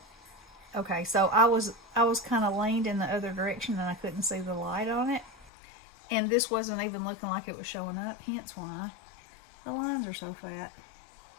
okay, so I was kind of leaned in the other direction and I couldn't see the light on it, and this wasn't even looking like it was showing up, hence why the lines are so fat.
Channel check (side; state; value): right; drops out; at 5.5 s